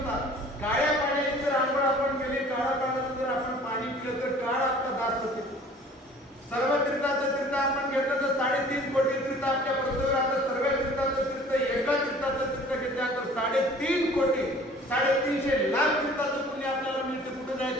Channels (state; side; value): normal; both; correlation 0.49